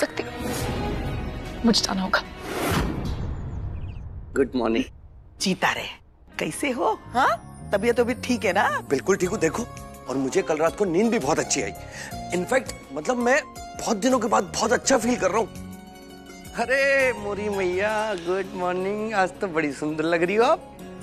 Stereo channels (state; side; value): identical; both; correlation 1.00